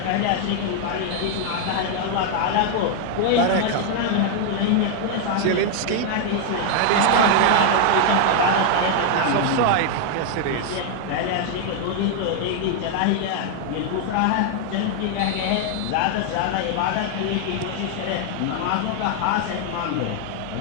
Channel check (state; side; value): different; both; correlation 0.00